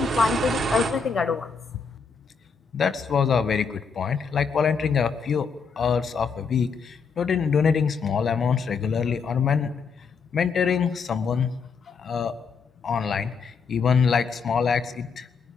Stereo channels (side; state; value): right; quieter; 5.4 dB